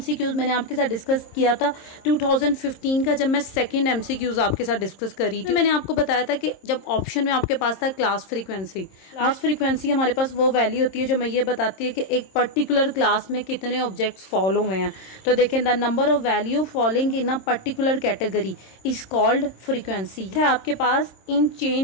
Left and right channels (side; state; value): right; late; 26 ms